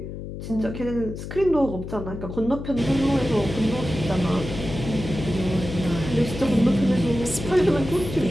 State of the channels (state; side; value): noise; left; hum, 9 dB below the sound